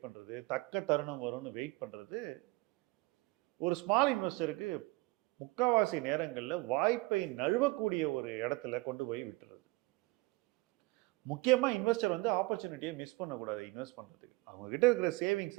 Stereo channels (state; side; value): quieter; left; 23.3 dB